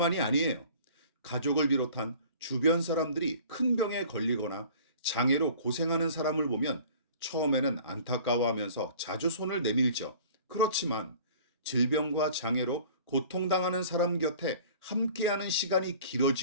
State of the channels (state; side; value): inverted; both; correlation -0.47